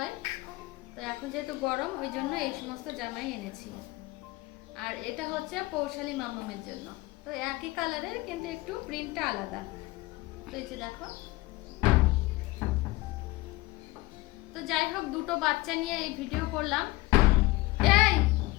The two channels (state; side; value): quieter; right; 20.4 dB